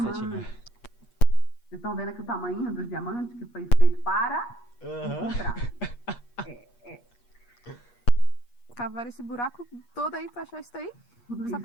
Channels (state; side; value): late; right; 8.4 ms